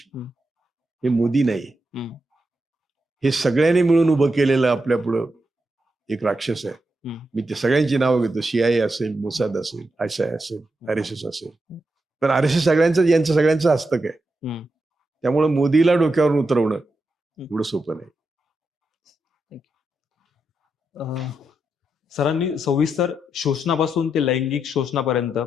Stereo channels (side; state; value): both; normal; correlation 0.85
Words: हं, हे मोदी नाही. हं, हे सगळ्यांनी मिळून उभं केलेलं आपल्या पुढं एक राक्षस आहे. हं. मी ते सगळ्यांची नावं घेतो. CIA असेल, मोसाद असेल, ISI असेल, RSS असेल. पण RSS यांचं सगळ्यांचं हस्तक आहे. हं. त्यामुळे मोदीला डोक्यावरून उतरवणं हं. एवढं सोपं नाही. अ, सरांनी सविस्तर शोषणापासून ते लैंगिक शोषणापर्यंत,